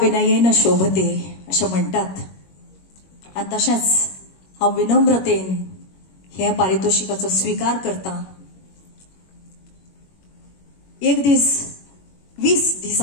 शोभते अशें म्हणटात आनी तशेंच हांव विनम्रतेन हे पारितोषिकाचो स्वीकार करता. एक दीस 20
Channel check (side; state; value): right; late; 21 ms